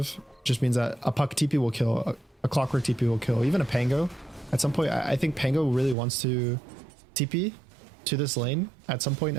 just means that a Puck TP will kill, a Clockwork TP will kill, even a Pango. At some point, I think Pango really wants to TP to this lane at some point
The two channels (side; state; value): left; drops out; at 6.0 s